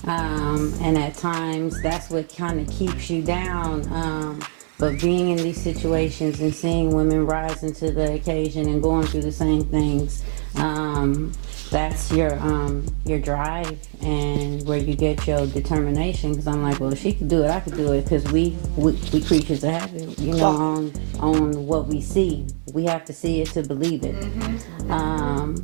and at times that's what kind of keeps you down. But being in these situations and seeing women rise into the occasion and going through the same things, that's your drive and where you get your determination. Because I'm like, well, if she could do it, I could do it. Because we creatures of habit, you know, on what we see. We have to see it to believe it.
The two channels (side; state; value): left; silent; 57 dB below the other